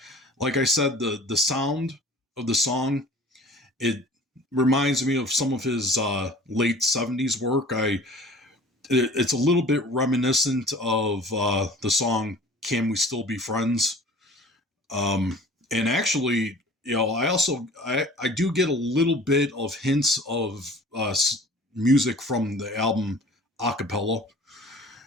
like I said, the sound of the song, it reminds me of some of his late 70s work. It's a little bit reminiscent of the song "Can We Still Be Friends?" And actually, I do get a little bit of hints of music from the album Acapella,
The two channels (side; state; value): both; normal; correlation 0.46